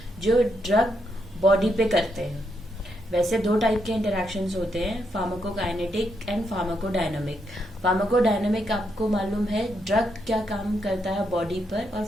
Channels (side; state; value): both; normal; correlation 0.79